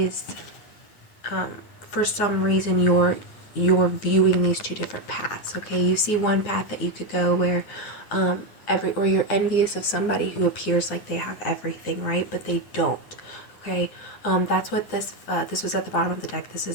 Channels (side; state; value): right; late; 9.7 ms